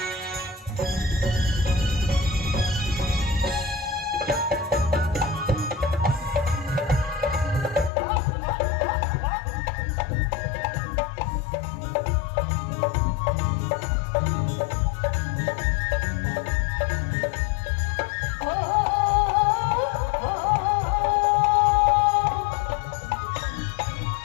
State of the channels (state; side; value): drops out; right; at 7.9 s